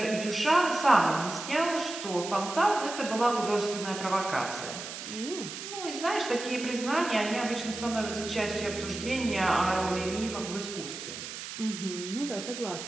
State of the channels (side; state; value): right; noise; hiss, 9 dB below the sound